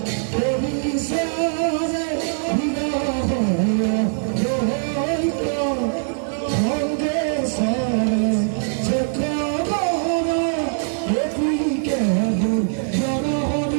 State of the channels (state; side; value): silent; left; digital silence